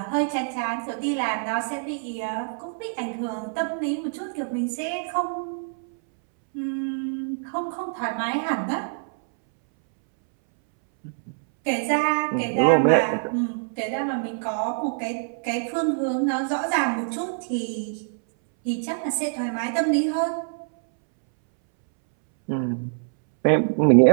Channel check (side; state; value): left; silent; 62 dB below the other